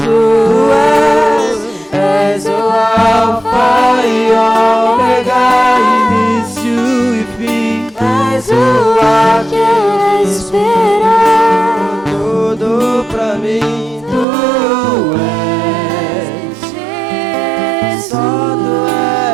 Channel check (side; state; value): left; drops out; at 14.2 s